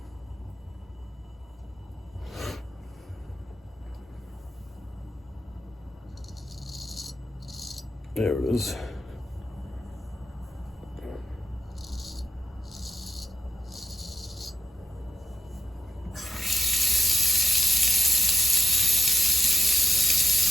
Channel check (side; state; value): both; normal; correlation 0.83